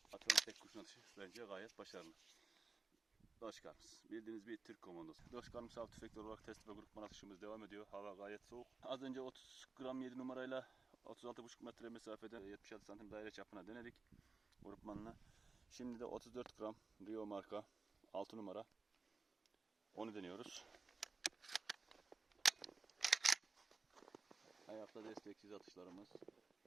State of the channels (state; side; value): quieter; left; 4.1 dB